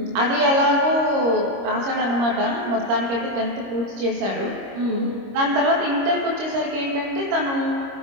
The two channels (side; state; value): left; late; 25 ms